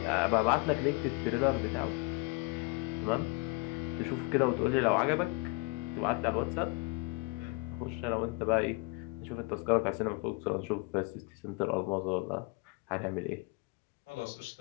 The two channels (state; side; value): quieter; right; 26.1 dB